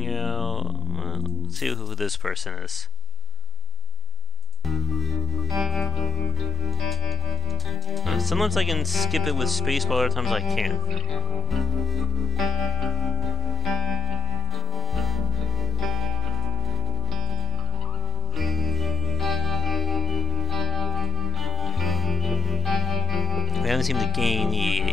out. Well, let's see who this person is. Sometimes I can skip it with space, but other times I can't. We haven't seemed to gain the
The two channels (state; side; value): normal; both; correlation 0.84